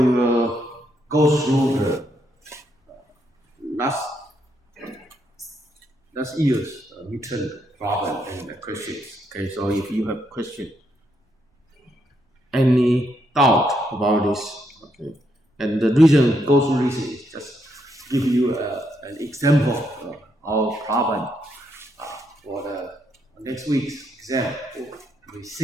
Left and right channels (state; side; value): normal; both; correlation 0.77